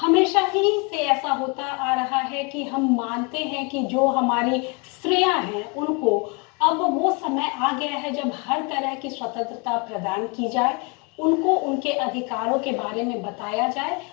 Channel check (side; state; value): right; quieter; 31.3 dB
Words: ही से ऐसा होता आ रहा है कि हम मानते हैं कि जो हमारी स्त्रियां हैं उनको अब वो समय आ गया है जब हर तरह की स्वतंत्रता प्रदान की जाए, उनको उनके अधिकारों के बारे में बताया जाए